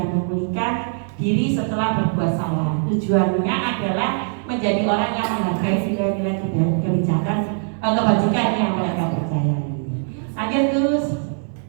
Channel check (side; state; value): left; silent; 63 dB below the other